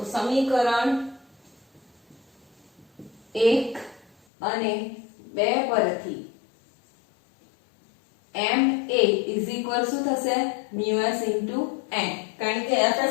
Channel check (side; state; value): right; drops out; at 4.1 s